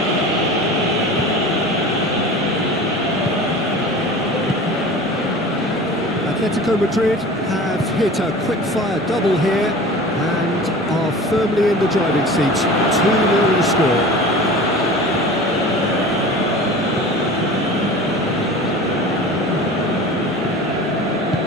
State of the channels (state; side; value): normal; both; correlation 0.38